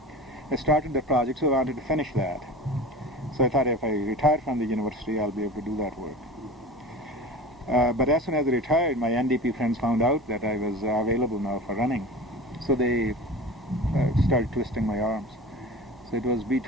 I started the project, so I wanted to finish that. So I thought if I retire from the university, I'll be able to do that work. But as soon as I retired, my NDP friends found out that I was available now for running. So they started twisting my arms. So it was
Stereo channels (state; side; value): normal; both; correlation 0.34